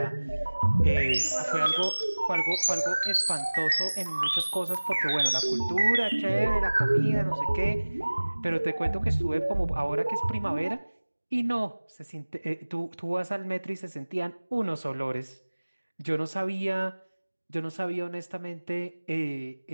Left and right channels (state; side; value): inverted; both; correlation -1.00